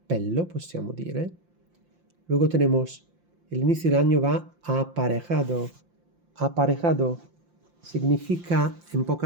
possiamo dire. Luego tenemos el inicio del año va aparejado. Aparejado significa, en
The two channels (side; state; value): left; late; 5.8 ms